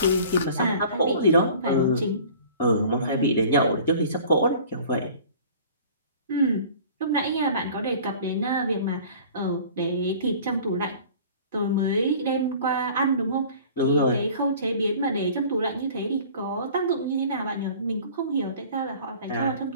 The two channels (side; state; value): both; inverted; correlation -0.46